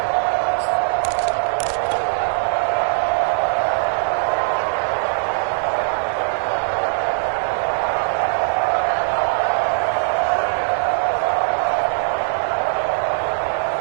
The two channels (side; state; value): left; silent; 65 dB below the other